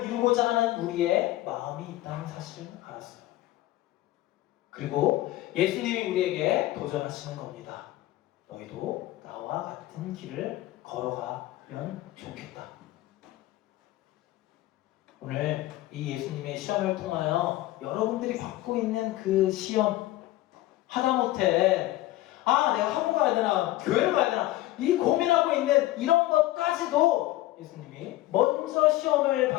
이루고자 하는 우리의 마음이 있다는 사실을 알았어요. 그리고 예수님이 우리에게 도전하시는 겁니다. 너희도 나와 같은 길을 걸어가면 좋겠다. 오늘 이 예수님의 시험을 통하여 여러분들이 받고 있는 그 시험, 하다못해 내가 학원 가야 되나 교회를 가야 되나 이 고민하고 있는 이런 것까지도 예수님이 먼저 시험을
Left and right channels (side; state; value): right; quieter; 16.4 dB